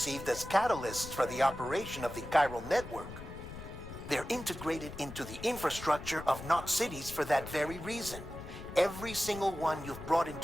as catalysts for the operation of the chiral network. They're integrated into the infrastructure of Knot cities for that very reason. Every single one you've brought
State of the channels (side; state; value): left; noise; rumble, 12 dB below the sound